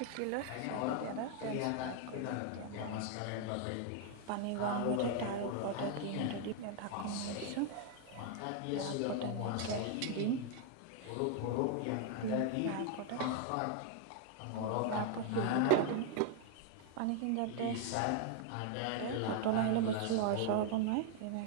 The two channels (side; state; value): both; different; correlation 0.00